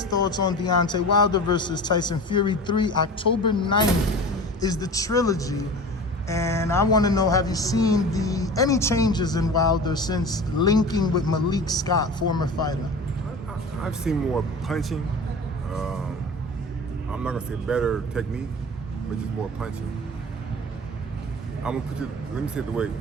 thoughts on Deontay Wilder versus Tyson Fury 3. October 9th is the trilogy. And I want to know, have you seen any changes in Wilder since linking with Malik Scott, former fighter? I've seen more punching. I'm not going to say better technique, but just more punching. I'm going to let me say it the way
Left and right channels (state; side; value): normal; both; correlation 0.35